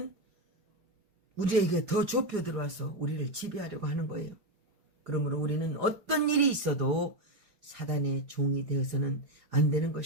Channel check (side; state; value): left; late; 4.9 ms